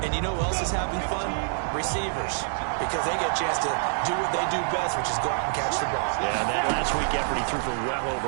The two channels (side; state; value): left; silent; digital silence